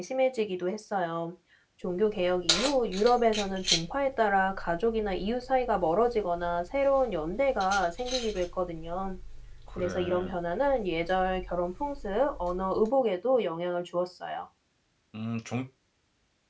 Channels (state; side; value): identical; both; correlation 1.00